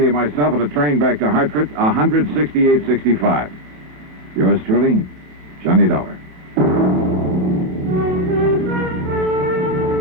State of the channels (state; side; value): late; left; 27 ms